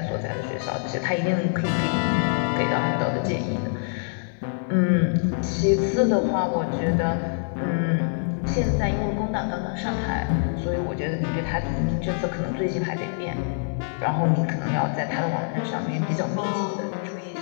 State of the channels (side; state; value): right; silent; digital silence